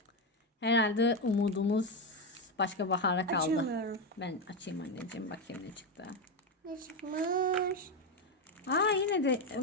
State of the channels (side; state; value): both; normal; correlation 0.10